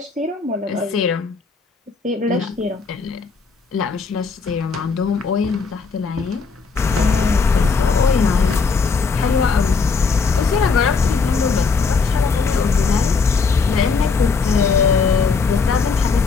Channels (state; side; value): quieter; right; 4.8 dB